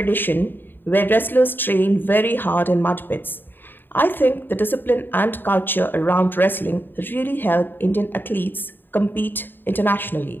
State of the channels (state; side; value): late; right; 0.095 ms